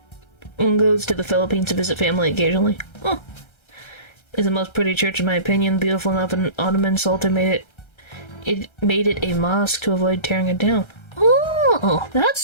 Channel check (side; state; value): right; late; 1.3 ms